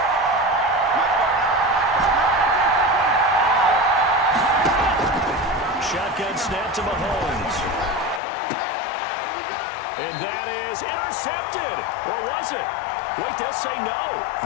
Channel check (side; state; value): right; drops out; at 8.2 s